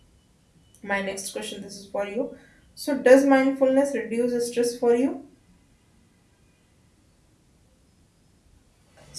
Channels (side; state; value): both; identical; correlation 1.00